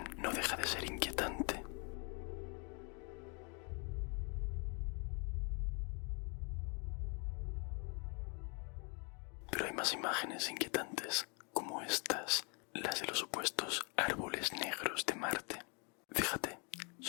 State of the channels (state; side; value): quieter; right; 34.8 dB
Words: no deja de ser inquietante. Pero hay más imágenes inquietantes, como estas, las de los supuestos árboles negros de Marte. Fíjate,